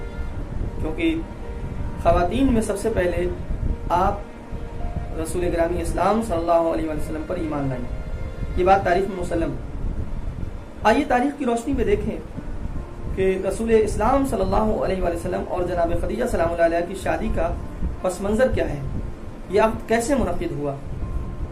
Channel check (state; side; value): identical; both; correlation 1.00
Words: کیونکہ خواتین میں سب سے پہلے آپ رسول گرامی اسلام صلی اللہ علیہ وسلم پر ایمان لائیں۔ یہ بات تاریخ میں مسلم۔ آئیے تاریخ کی روشنی میں دیکھیں کہ رسول اسلام صلی اللہ علیہ وسلم اور جناب خدیجہ سلام اللہ علیہ کی شادی کا پس منظر کیا ہے، یہ عقد کیسے منعقد ہوا۔